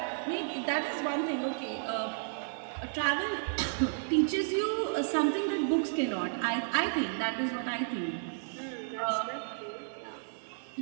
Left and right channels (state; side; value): silent; left; digital silence